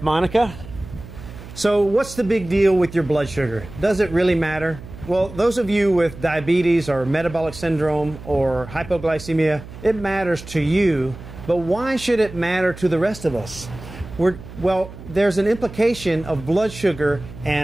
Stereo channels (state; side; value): noise; right; hum, 15 dB below the sound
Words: Monica. So what's the big deal with your blood sugar? Does it really matter? Well, those of you with diabetes or metabolic syndrome or hypoglycemia, it matters to you, but why should it matter to the rest of us? Well, there's an implication of blood sugar